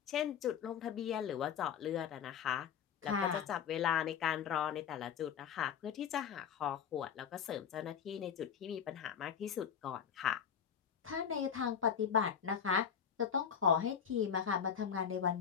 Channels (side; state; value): right; quieter; 7.7 dB